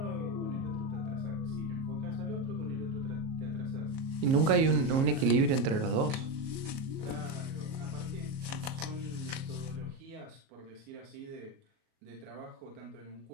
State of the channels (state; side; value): late; left; 37 ms